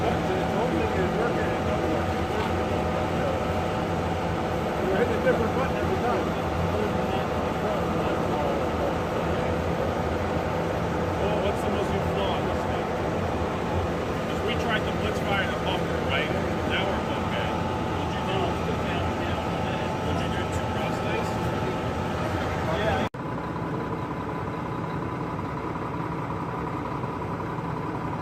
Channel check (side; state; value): both; identical; correlation 1.00